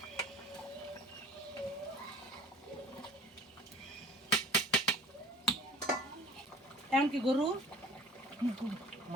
এমন কি গরু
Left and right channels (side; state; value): both; normal; correlation 0.47